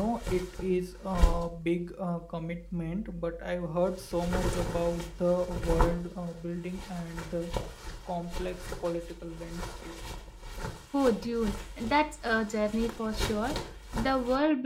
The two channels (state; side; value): identical; both; correlation 1.00